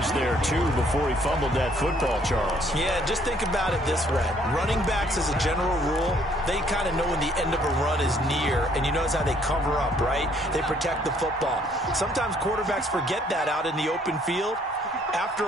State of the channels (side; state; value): both; normal; correlation 0.64